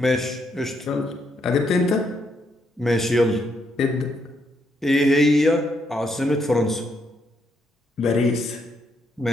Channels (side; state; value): both; normal; correlation 0.76